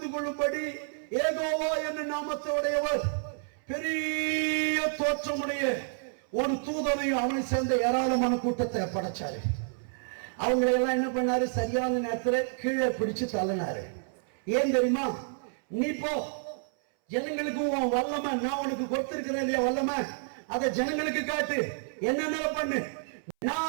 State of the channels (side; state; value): left; silent; 58 dB below the other